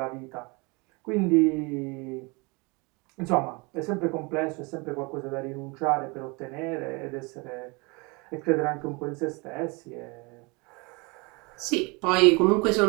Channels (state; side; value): quieter; left; 28.3 dB